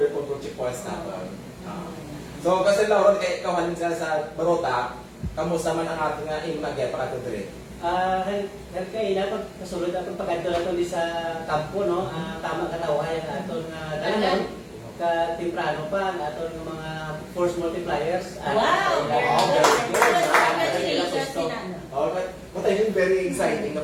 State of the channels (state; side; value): identical; both; correlation 1.00